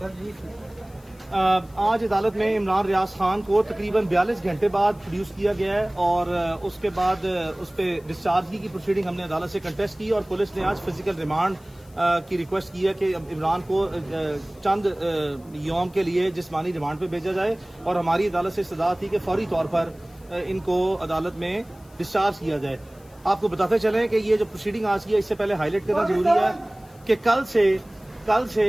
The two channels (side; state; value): left; noise; hiss, 29 dB below the sound